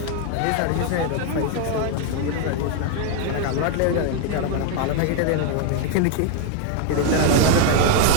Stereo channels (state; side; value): different; both; correlation 0.00